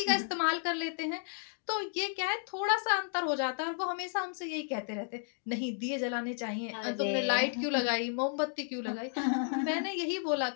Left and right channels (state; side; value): silent; right; 56 dB below the other